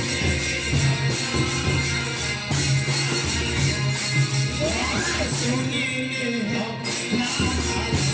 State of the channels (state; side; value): identical; both; correlation 1.00